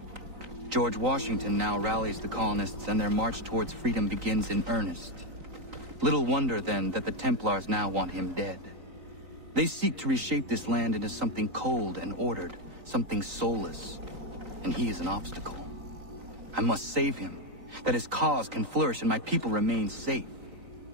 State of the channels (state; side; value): late; left; 3.9 ms